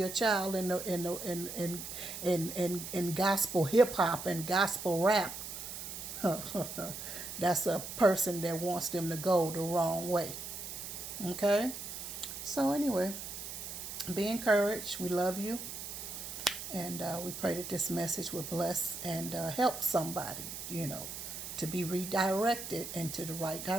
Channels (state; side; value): noise; right; hiss, 8 dB below the sound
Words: child in gospel hip hop and gospel rap, that's a person that wants them to go the wrong way. Okay? So, anyway, be encouraged. We love you. And we pray that this message will bless and help somebody, to be redirected into the right